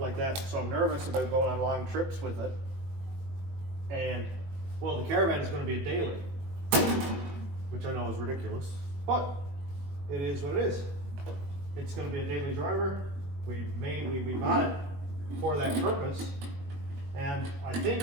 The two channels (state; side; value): late; left; 21 ms